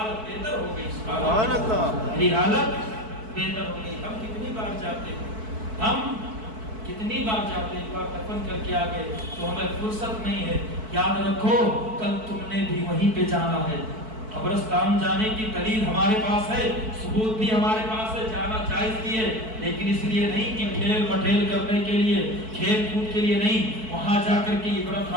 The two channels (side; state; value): left; late; 4.6 ms